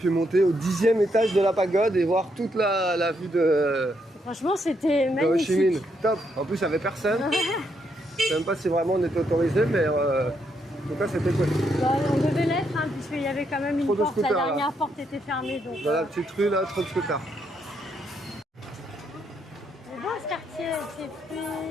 monter au 10e étage de la pagode et voir toute la vue de Franchement, c'était Ho Chi Minh. magnifique. Top. En plus, il n'y avait personne. Je sais même pas si vraiment on était autorisé, mais en tout cas, c'était cool. Bah, on devait l'être, hein, puisqu'il y avait quand même une Trop de porte. La scooters, là. dernière porte était fermée. Donc, Dans la petite rue, là, trop de scooters. c'est beau ce quartier, avec ses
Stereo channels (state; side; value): normal; both; correlation 0.77